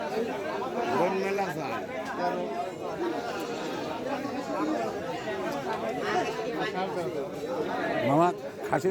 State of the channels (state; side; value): identical; both; correlation 1.00